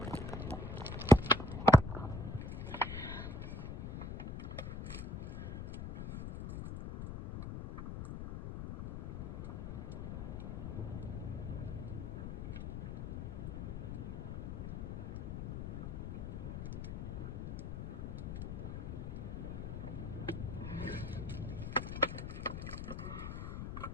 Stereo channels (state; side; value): noise; left; rumble, 5 dB below the sound